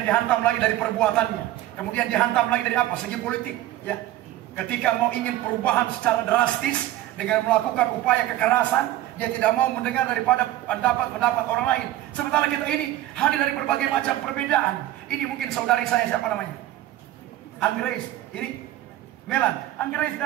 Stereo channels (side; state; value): left; quieter; 14.6 dB